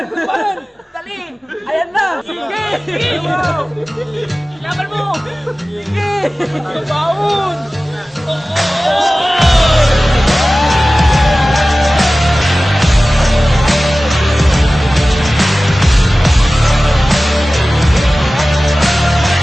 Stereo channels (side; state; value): both; normal; correlation 0.97